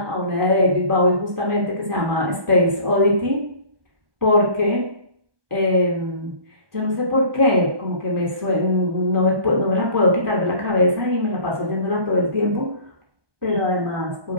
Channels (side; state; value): left; late; 1.2 ms